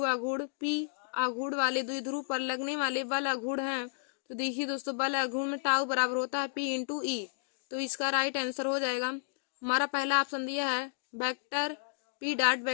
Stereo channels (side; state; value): right; silent; digital silence